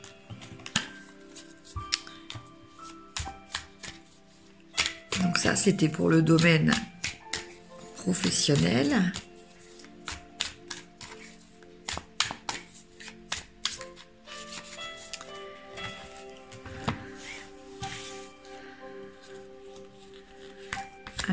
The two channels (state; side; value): identical; both; correlation 1.00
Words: Donc ça, c'était pour le domaine professionnel.